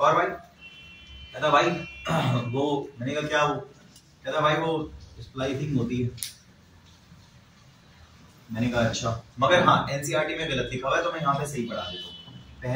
भाई कहता भाई वो मैंने कहा क्या, वो कहता भाई वो स्प्लाइसिंग होती है, मैंने कहा अच्छा, मगर हाँ एनसीईआरटी में गलत लिखा हुआ है, तो मैं यहाँ पे सही पढ़ा देता हूँ।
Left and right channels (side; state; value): both; identical; correlation 1.00